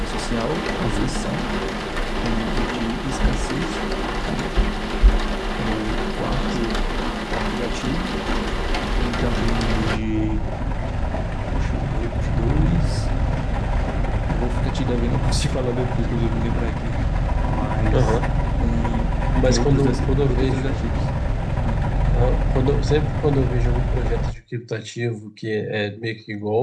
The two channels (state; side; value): identical; both; correlation 1.00